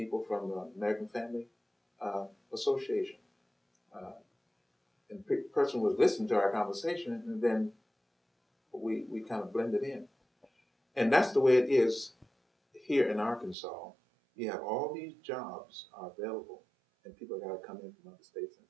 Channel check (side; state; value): left; drops out; at 13.6 s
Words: from the American Family Association. And the person was listening to our conversation, and then we kind of blended in. And that's the way it is here in Arkansas. You have all these jobs are available, and people got to come in from other states and